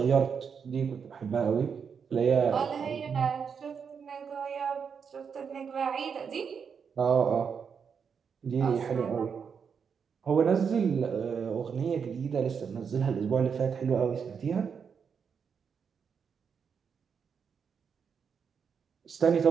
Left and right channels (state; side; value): quieter; left; 6.5 dB